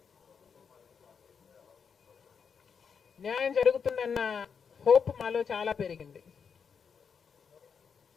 న్యాయం జరుగుతుందన్న హోప్ మాలో చాలా పెరిగింది.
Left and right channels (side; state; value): right; quieter; 6.4 dB